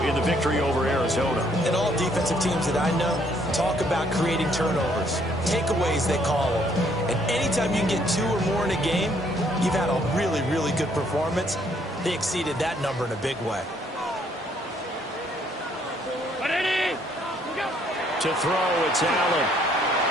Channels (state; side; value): normal; both; correlation 0.66